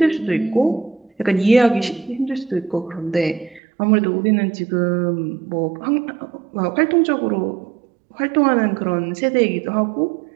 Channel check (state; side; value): drops out; left; at 3.6 s